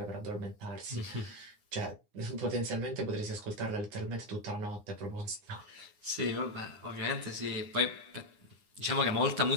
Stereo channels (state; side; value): late; left; 9.8 ms